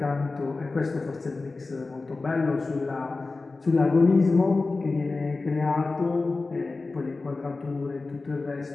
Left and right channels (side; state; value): right; quieter; 3.6 dB